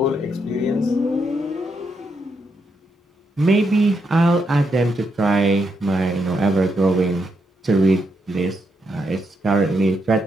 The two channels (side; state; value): both; normal; correlation 0.80